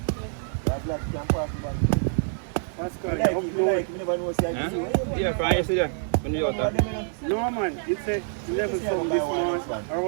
That black can pass the bag. Pascal, Like, you if you like, you never know say I see. Yeah, fine, yesterday. When you out there. No man, it's a 11 song this month. Or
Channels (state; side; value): silent; left; digital silence